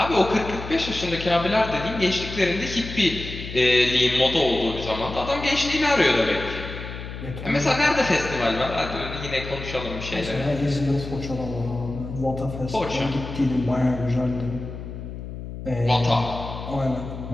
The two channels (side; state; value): left; noise; hum, 9 dB below the sound